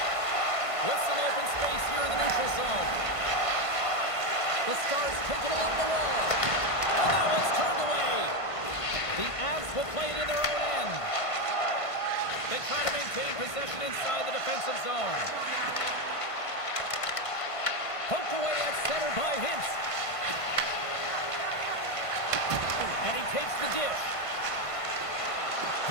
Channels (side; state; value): right; late; 1.5 ms